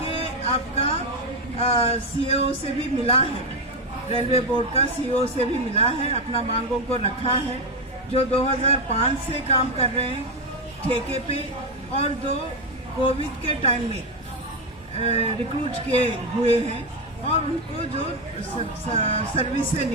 आपका सीईओ से भी मिला है, रेलवे बोर्ड का सीईओ से भी मिला है, अपना मांगों को रखा है। जो 2005 से काम कर रहे हैं ठेके पे और जो कोविड के टाइम में रिक्रूट किए हुए हैं और उनको जो सर्विस से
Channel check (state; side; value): normal; both; correlation 0.09